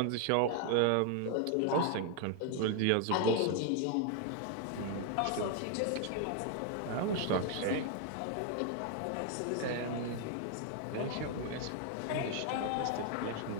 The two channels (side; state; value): both; different; correlation 0.00